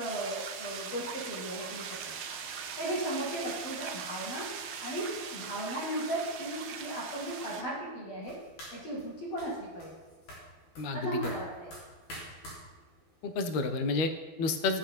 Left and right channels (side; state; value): right; late; 11 ms